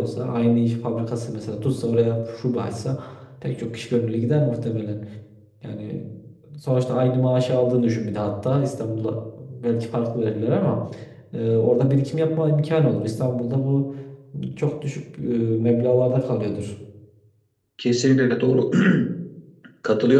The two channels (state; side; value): identical; both; correlation 1.00